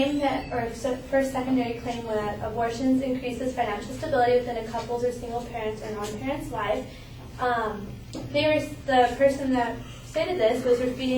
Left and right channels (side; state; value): both; identical; correlation 1.00